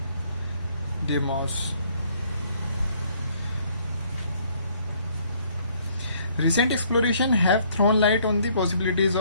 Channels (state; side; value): inverted; both; correlation -0.63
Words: Deimos. Recent exploration have thrown light on the possibilities